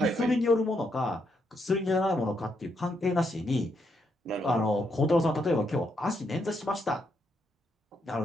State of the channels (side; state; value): both; normal; correlation 0.78